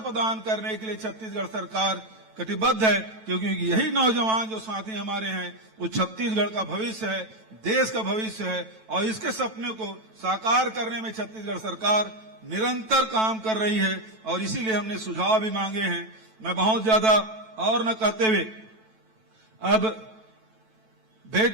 प्रदान करने के लिए छत्तीसगढ़ सरकार कटिबद्ध है, क्योंकि यही नौजवान जो साथी हमारे हैं वो छत्तीसगढ़ का भविष्य है, देश का भविष्य है और इसके सपने को साकार करने में छत्तीसगढ़ सरकार निरंतर काम कर रही है और इसीलिए हमने सुझाव भी मांगे हैं। मैं बहुत ज्यादा और न कहते हुए अब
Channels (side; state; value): left; late; 9.1 ms